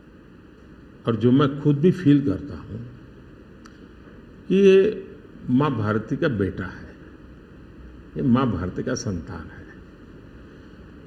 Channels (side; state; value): both; identical; correlation 1.00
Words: और जो मैं खुद भी फील करता हूं कि ये माँ भारती का बेटा है, ये माँ भारती का संतान है।